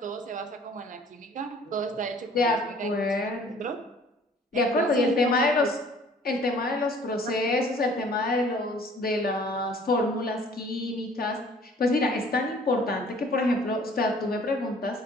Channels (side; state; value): both; normal; correlation 0.54